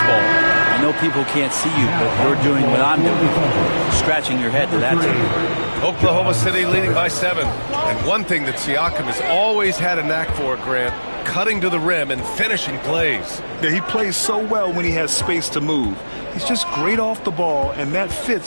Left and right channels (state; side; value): inverted; both; correlation -1.00